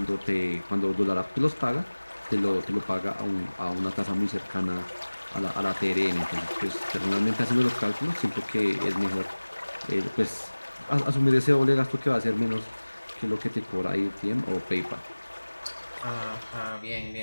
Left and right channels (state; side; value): inverted; both; correlation -1.00